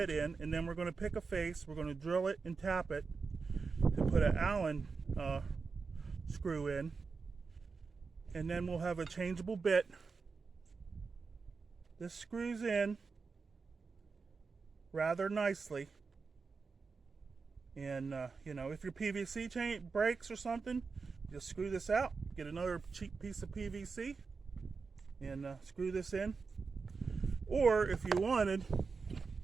in, and then we're going to pick a face, we're going to drill it and tap it to put an Allen screw in, and then we'll have a changeable bit. This screws in rather nicely, and you know, if your PVC chain breaks or something, just screw this out, get another cheap piece of PVC and screw this in. Or if you wanted,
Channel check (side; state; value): left; quieter; 4.8 dB